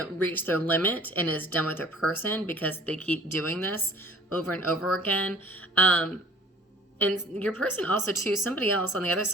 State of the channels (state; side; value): normal; both; correlation 0.50